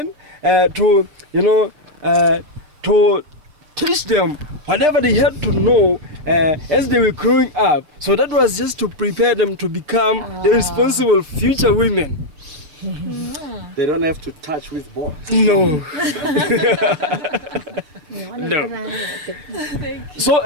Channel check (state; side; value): late; left; 6.6 ms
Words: to teach them whatever they had to know as they were growing up. So that was just to prepare them to become the responsible future women. They don't have to touch with boys. No. No. So